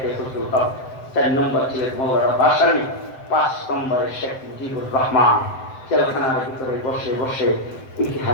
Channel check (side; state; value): right; late; 7.8 ms